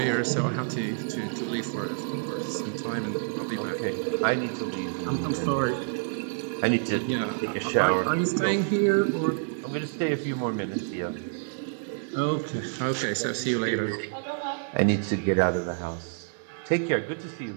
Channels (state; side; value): silent; left; digital silence